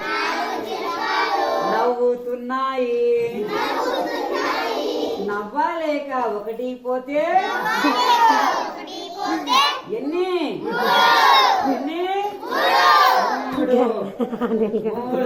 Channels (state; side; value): identical; both; correlation 1.00